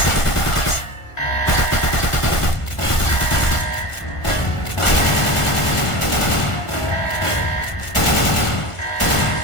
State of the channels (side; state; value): right; late; 1.5 ms